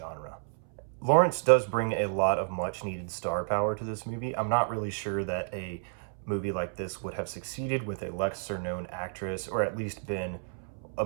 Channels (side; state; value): left; silent; 57 dB below the other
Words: Lawrence does bring a lot of much-needed star power to this movie. I'm not really sure that a movie like this would have succeeded with a lesser-known actress, or at least been a